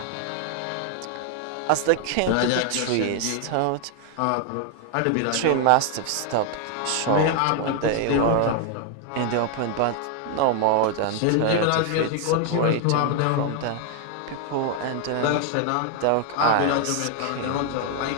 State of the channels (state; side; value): different; both; correlation 0.00